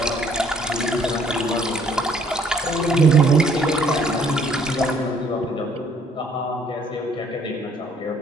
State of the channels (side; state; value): both; normal; correlation 0.62